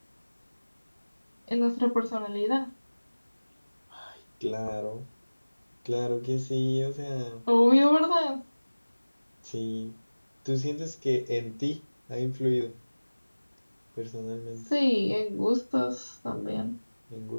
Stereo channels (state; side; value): inverted; both; correlation -1.00